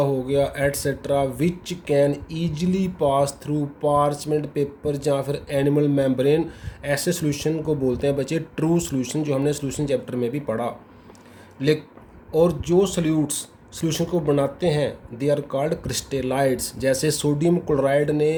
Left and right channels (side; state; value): both; identical; correlation 1.00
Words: गया etcetera which can easily pass through parchment paper या फिर एनिमल मेम्ब्रेन, ऐसे सॉल्यूशन को बोलते हैं बच्चे ट्रू सॉल्यूशन, जो हमने सॉल्यूशन चैप्टर में भी पढ़ा। और जो सॉल्यूशन को बनाते हैं दे आर कॉल्ड क्रिस्टेलाइड्स। जैसे सोडियम क्लोराइड